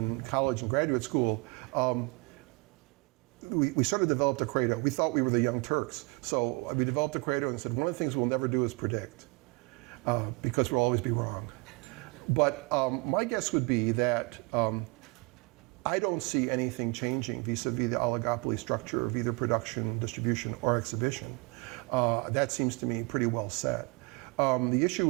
college and graduate school, we sort of developed a credo. We thought we were the Young Turks. So we developed a credo and said, one of the things we'll never do is predict, because we'll always be wrong. But my guess would be that I don't see anything changing vis-a-vis the oligopoly structure of either production, distribution, or exhibition. That seems to me pretty well set. The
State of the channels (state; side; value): quieter; left; 28.4 dB